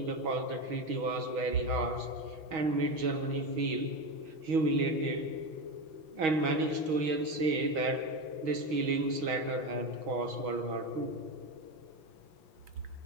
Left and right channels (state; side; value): late; left; 6.3 ms